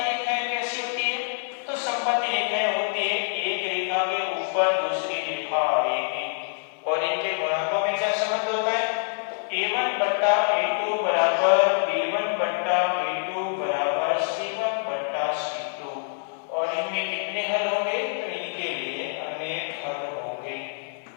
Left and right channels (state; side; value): silent; right; 56 dB below the other